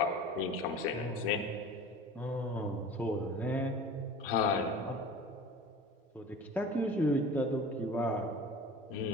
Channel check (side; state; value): both; normal; correlation 0.39